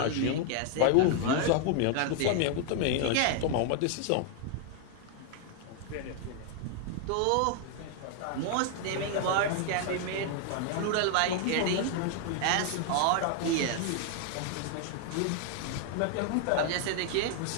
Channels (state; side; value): different; both; correlation 0.00